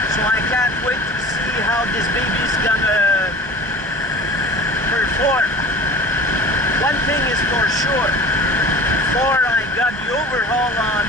So I can't wait to see how this baby's gonna perform. One thing is for sure, before I got the overhaul on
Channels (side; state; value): both; normal; correlation 0.39